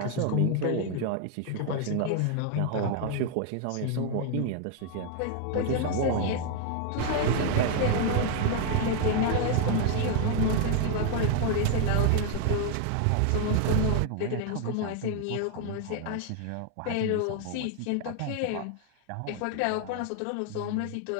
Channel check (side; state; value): both; different; correlation 0.00